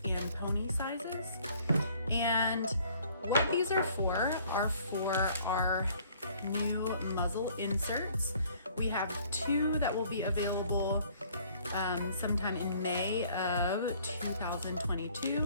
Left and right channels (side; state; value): both; inverted; correlation -0.58